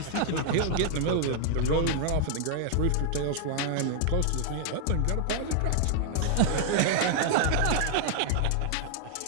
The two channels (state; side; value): different; both; correlation 0.00